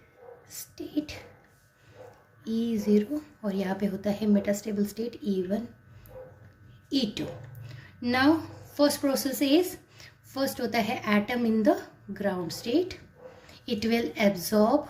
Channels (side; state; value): both; identical; correlation 1.00